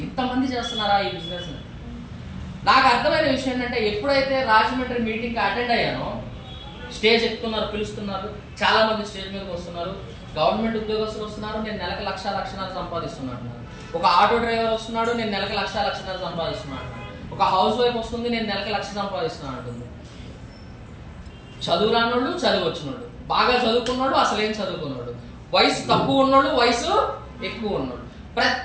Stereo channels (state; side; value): identical; both; correlation 1.00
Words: ఇంతమంది చేస్తున్నారా ఈ బిజినెస్. నాకు అర్థమైన విషయం ఏంటంటే ఎప్పుడైతే రాజమండ్రి మీటింగ్కి అటెండ్ అయ్యానో, స్టేజ్ ఎక్కుతున్నారు, పిలుస్తున్నారు, చాలా మంది స్టేజ్ మీదకి వస్తున్నారు, గవర్నమెంట్ ఉద్యోగస్తులు వస్తున్నారు, నేను నెలకు 1,00,000 సంపాదిస్తున్నాను. ఒక ఆటో డ్రైవర్ వస్తున్నాడు, నేను నెలకు 1,00,000 సంపాదిస్తున్నాను. ఒక హౌస్ వైఫ్ వస్తుంది, నేను నెలకు 1,00,000 సంపాదిస్తున్నాను అంటుంది. చదువు రానోళ్ళు, చదువు వచ్చినోళ్ళు, బాగా చదువుకున్నాడు, అసలు ఏం చదువుకున్నాడు, వయసు తక్కువ ఉన్నోళ్ళు, వయసు ఎక్కువ ఉన్నాడు,